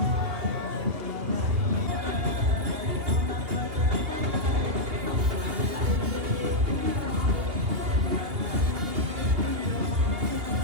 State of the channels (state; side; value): late; left; 2.9 ms